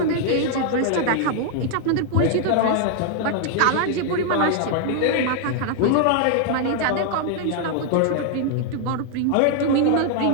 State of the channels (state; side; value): different; both; correlation 0.00